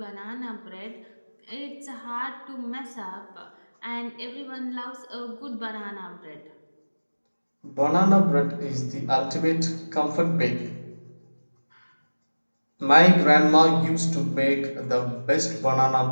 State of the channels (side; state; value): both; inverted; correlation -1.00